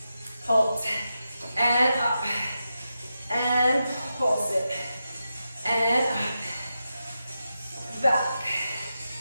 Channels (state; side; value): inverted; both; correlation -0.88